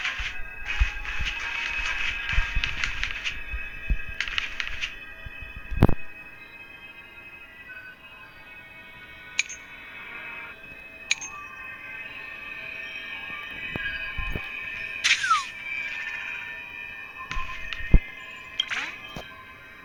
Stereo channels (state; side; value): identical; both; correlation 1.00